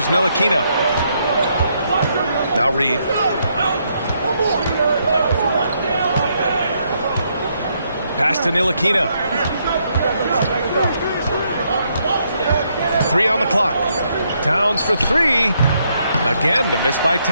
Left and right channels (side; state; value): both; inverted; correlation -0.75